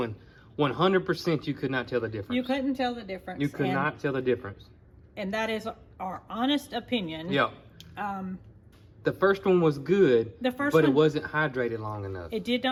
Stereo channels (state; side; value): identical; both; correlation 1.00